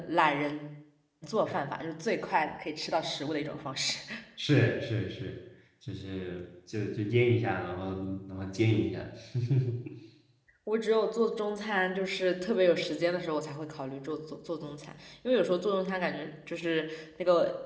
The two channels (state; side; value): identical; both; correlation 1.00